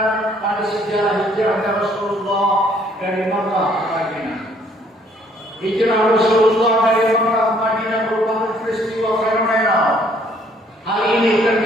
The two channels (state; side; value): normal; both; correlation 0.63